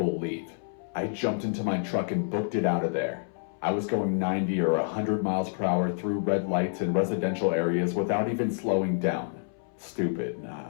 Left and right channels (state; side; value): silent; right; 59 dB below the other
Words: leave. I jumped into my truck and booked it out of there. I was going 90 or 100 miles per hour through red lights in residential areas without even slowing down. Stupid,